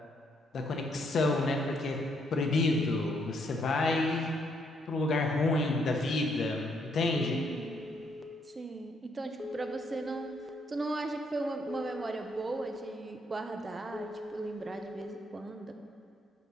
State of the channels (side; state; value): both; normal; correlation 0.72